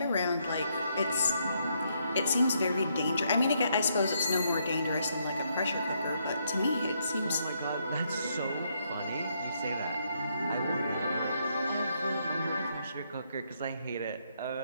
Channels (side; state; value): both; inverted; correlation -0.75